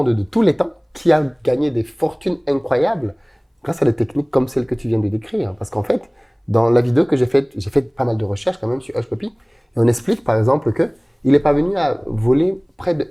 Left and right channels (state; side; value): identical; both; correlation 1.00